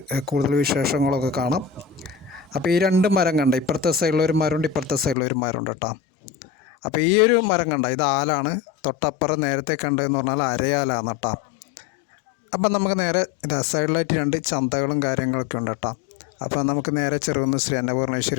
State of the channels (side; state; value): right; drops out; at 5.2 s